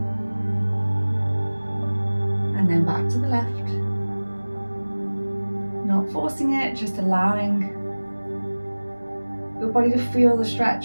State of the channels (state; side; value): inverted; both; correlation -1.00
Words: and then back to the left. Not forcing it, just allowing your body to feel the